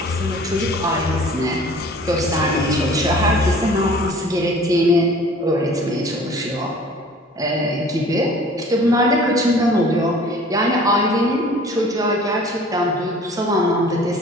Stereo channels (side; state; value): both; normal; correlation 0.48